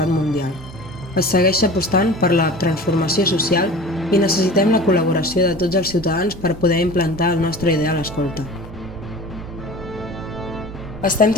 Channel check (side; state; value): both; normal; correlation 0.38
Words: mundial. Es segueix apostant per la transformació social i necessitem la col·laboració de tots els ciutadans per poder implantar el nostre ideal escolta. Estem